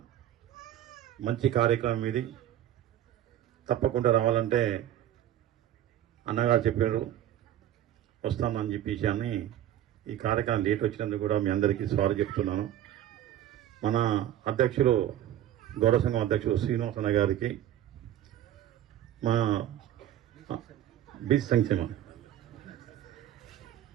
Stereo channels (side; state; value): left; quieter; 11.9 dB